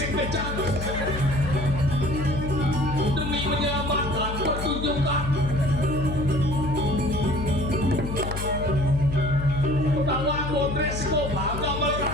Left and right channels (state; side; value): noise; left; hum, 6 dB below the sound